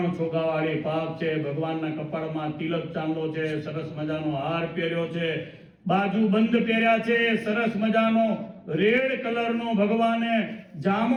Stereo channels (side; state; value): both; identical; correlation 1.00